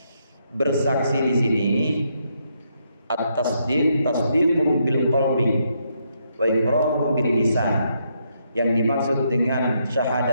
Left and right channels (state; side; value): inverted; both; correlation -0.77